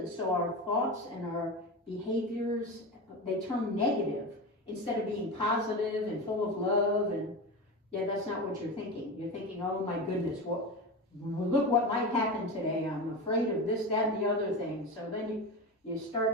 So our thoughts and our behaviors, they turn negative instead of being positive and full of love. And yeah, that's not what you're thinking. You're thinking, oh my goodness, look what might happen today. I'm afraid of this, that, and the other thing. So then you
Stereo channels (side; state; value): both; normal; correlation 0.23